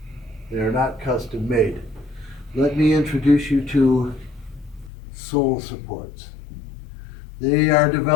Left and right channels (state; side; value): drops out; right; at 4.9 s